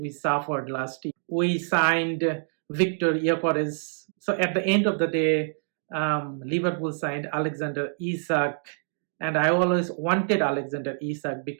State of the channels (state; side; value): silent; left; digital silence